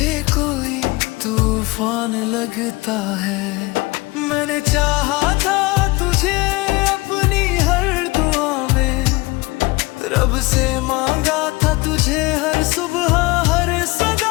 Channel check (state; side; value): quieter; right; 22.7 dB